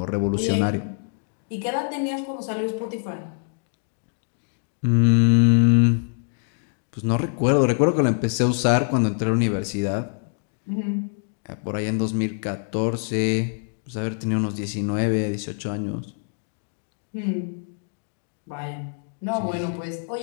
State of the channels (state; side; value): silent; right; digital silence